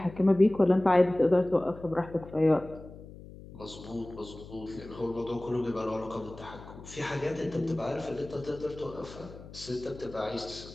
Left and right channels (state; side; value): noise; left; hum, 16 dB below the sound